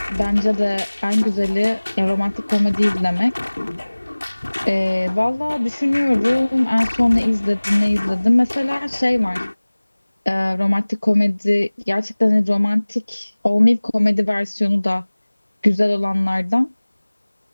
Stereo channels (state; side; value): inverted; both; correlation -1.00